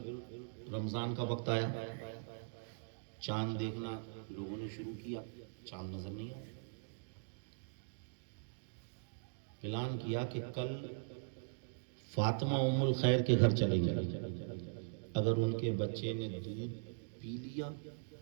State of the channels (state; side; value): silent; left; digital silence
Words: رمضان کا وقت آیا, چاند دیکھنا لوگوں نے شروع کیا, چاند نظر نہیں آیا. اعلان کیا کہ کل فاطمہ ام الخیر کے گھر چلیں گے, اگر ان کے بچے نے دودھ پی لیا